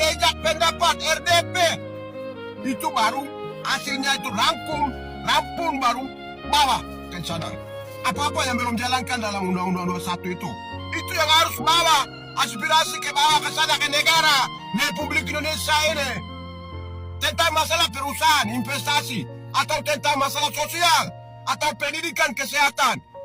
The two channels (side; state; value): both; identical; correlation 1.00